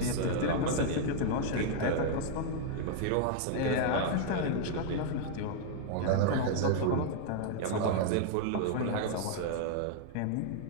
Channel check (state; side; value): different; both; correlation -0.01